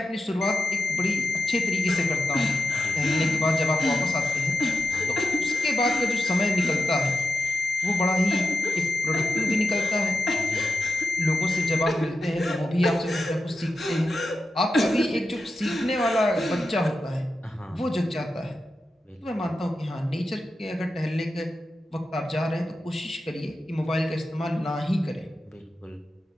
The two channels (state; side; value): normal; both; correlation 0.90